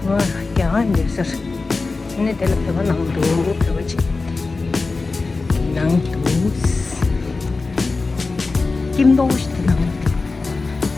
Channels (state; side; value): quieter; right; 3.8 dB